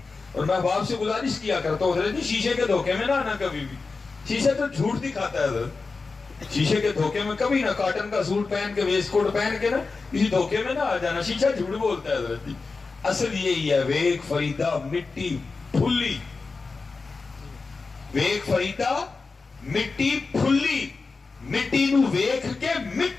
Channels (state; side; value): quieter; right; 4.2 dB